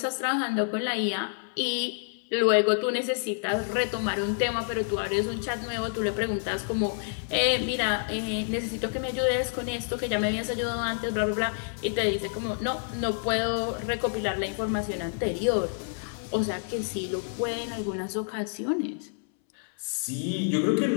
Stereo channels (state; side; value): silent; right; 59 dB below the other